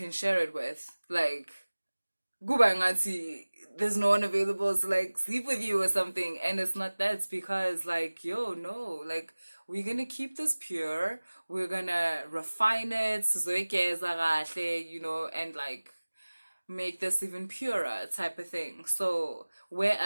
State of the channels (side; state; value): both; inverted; correlation -1.00